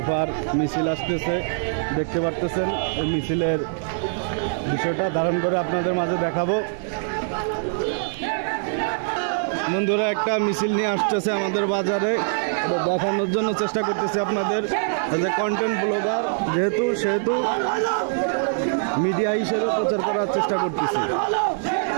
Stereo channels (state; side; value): silent; left; digital silence